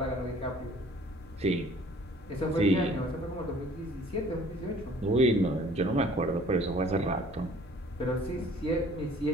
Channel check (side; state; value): both; normal; correlation 0.53